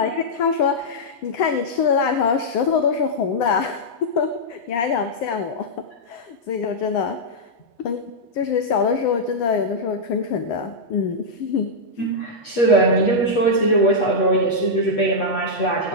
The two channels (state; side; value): late; right; 8.7 ms